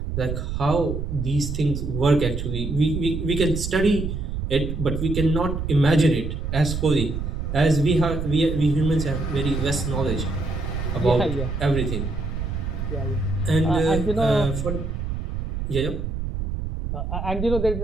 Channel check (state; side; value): noise; right; rumble, 4 dB below the sound